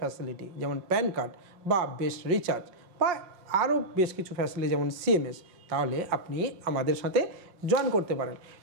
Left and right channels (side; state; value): left; late; 5.6 ms